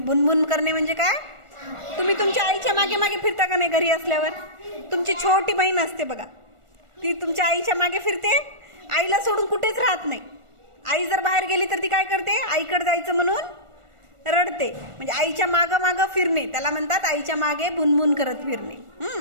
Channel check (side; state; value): left; late; 1.4 ms